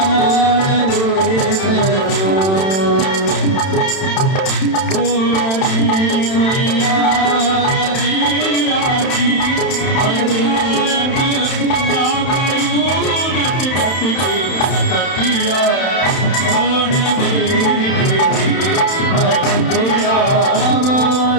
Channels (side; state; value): right; late; 31 ms